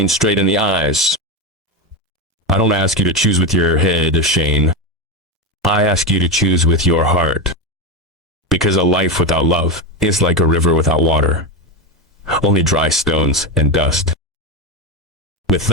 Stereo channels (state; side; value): normal; both; correlation 0.15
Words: straight in the eyes. I don't ask you to choose with your head, Shane. I ask you to choose with your heart. Because a life without love is like a river without water. Only dry stones and dust. With